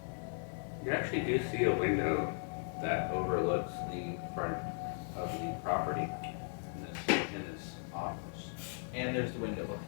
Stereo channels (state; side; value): silent; right; 53 dB below the other